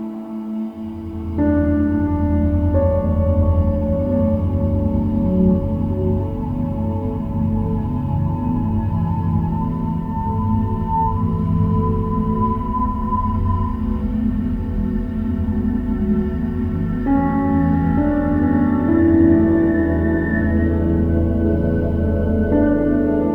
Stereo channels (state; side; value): identical; both; correlation 1.00